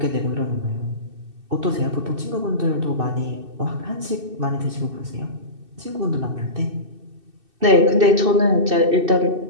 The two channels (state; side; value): late; left; 2.6 ms